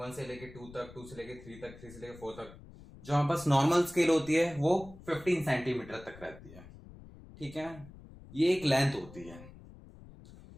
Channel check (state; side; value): noise; left; rumble, 18 dB below the sound